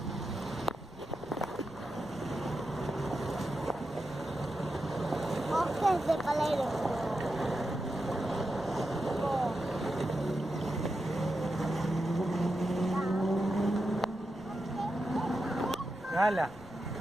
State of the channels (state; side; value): noise; left; rumble, 21 dB below the sound